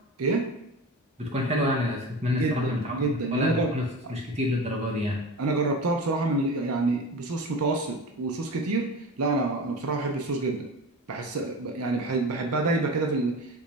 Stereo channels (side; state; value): both; normal; correlation 0.31